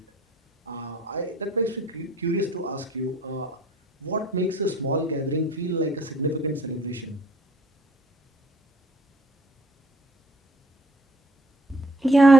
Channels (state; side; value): normal; both; correlation 0.58